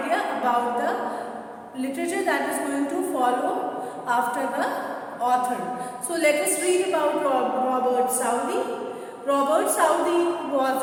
about the literature that is going to follow after the author. So let us read about Robert Southey. Robert Southey was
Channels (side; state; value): both; identical; correlation 1.00